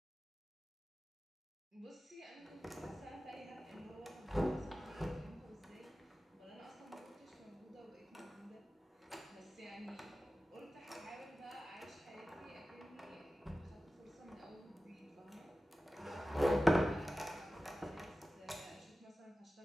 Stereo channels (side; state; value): both; normal; correlation 0.95